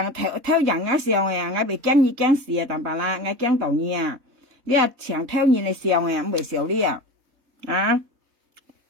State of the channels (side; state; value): left; late; 4.1 ms